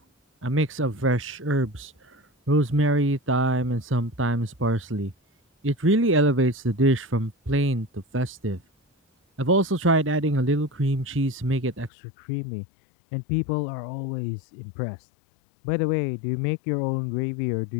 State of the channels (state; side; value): drops out; right; at 11.9 s